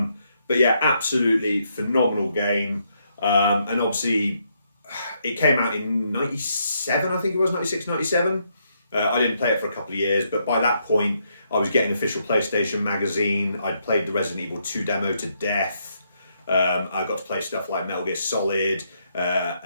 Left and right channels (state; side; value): inverted; both; correlation -0.76